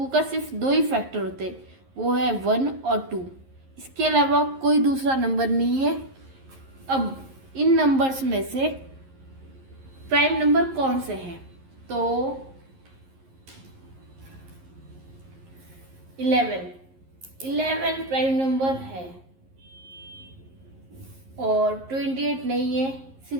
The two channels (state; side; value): late; left; 11 ms